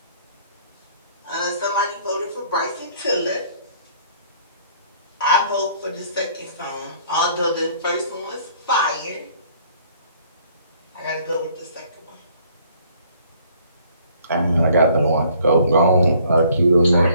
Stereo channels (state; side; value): inverted; both; correlation -0.59